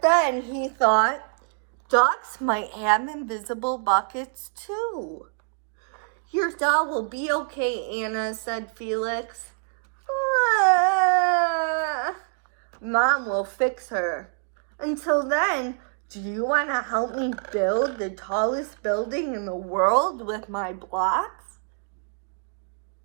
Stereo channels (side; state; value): left; silent; 58 dB below the other